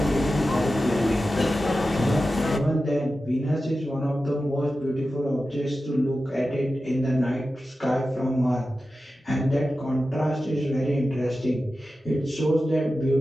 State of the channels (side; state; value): both; normal; correlation 0.93